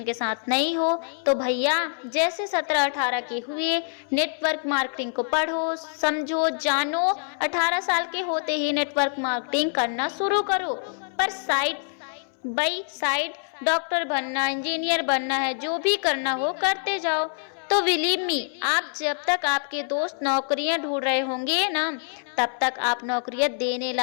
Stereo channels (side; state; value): right; silent; 61 dB below the other